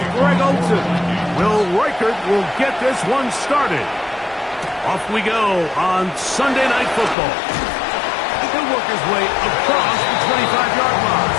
Greg Olson. Will Reichert will get this one started. Off we go on Sunday Night Football. He'll work his way across the 25-yard line.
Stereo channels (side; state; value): right; drops out; at 7.2 s